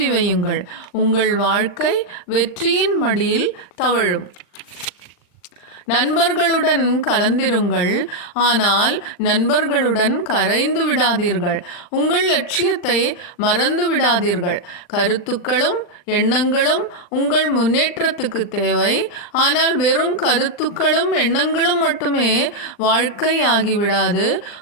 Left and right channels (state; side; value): late; right; 39 ms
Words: வையுங்கள். உங்கள் வாழ்க்கை வெற்றியின் மடியில் தவழும். நண்பர்களுடன் கலந்திருங்கள், ஆனால் நண்பர்களுடன் கரைந்து விடாதீர்கள். உங்கள் லட்சியத்தை மறந்து விடாதீர்கள். கருத்துக்களும் எண்ணங்களும் உங்கள் முன்னேற்றத்துக்கு தேவை. ஆனால் வெறும் கருத்துக்களும் எண்ணங்களும் மட்டுமே வாழ்க்கை ஆகிவிடாது.